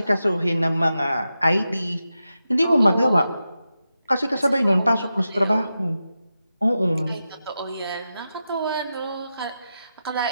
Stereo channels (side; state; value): both; inverted; correlation -0.90